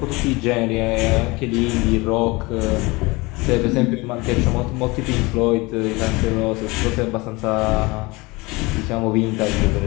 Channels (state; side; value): quieter; right; 23.9 dB